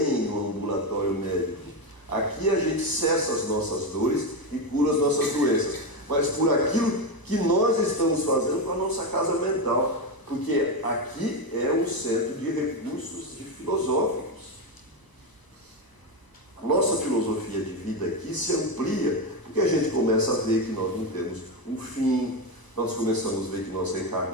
um ambulatório médico. Aqui a gente cessa as nossas dores e cura as nossas doenças. Mas por aquilo que nós estamos fazendo com a nossa casa mental. Porque aqui é um centro de recursos filosóficos. A nossa filosofia de vida aqui se amplia, porque a gente começa a ver que nós não temos um fim, nós começamos a ver que nós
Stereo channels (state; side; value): late; right; 1.0 ms